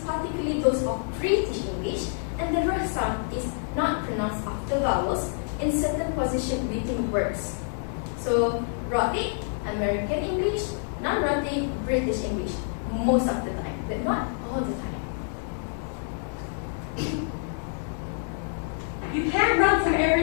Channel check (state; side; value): silent; right; 60 dB below the other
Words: particularly those of British English, and the r sound is not pronounced after vowels in certain position within words. So rhotic, American English, non-rhotic, British English, most of the time, but not all the time. You can't run from